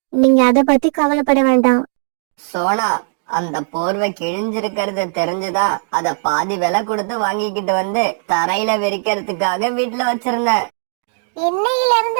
நீங்க அதை பத்தி கவலைப்பட வேண்டாம். சோனா, அந்த போர்வை கிழிஞ்சிருக்கிறது தெரிஞ்சுதா அத பாதி விலை கொடுத்து வாங்கிக்கிட்டு வந்து தரையில விரிக்கிறதுக்காக வீட்டுல வச்சிருந்தேன். இன்னையில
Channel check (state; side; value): silent; left; 57 dB below the other